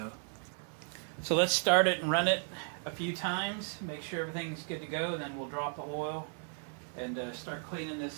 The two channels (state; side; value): silent; left; 54 dB below the other